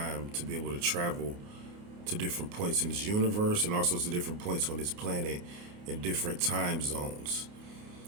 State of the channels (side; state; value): left; late; 29 ms